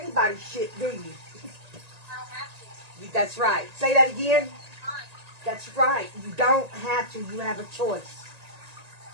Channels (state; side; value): late; left; 1.8 ms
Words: shit, do you? I don't have to. That's right. Say that again. Fine. That's right. You don't have to. You have a choice.